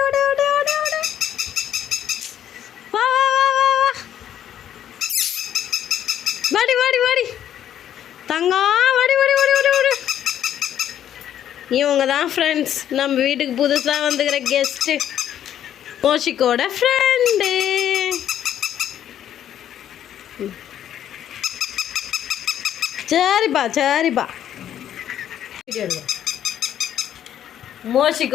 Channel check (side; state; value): right; quieter; 10.5 dB